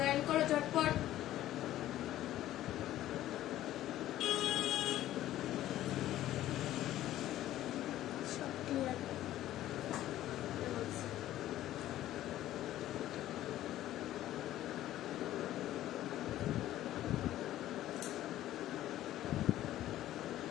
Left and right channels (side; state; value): right; quieter; 13.7 dB